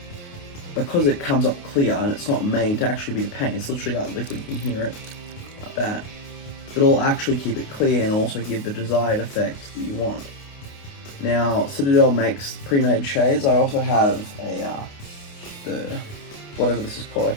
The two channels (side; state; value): right; late; 29 ms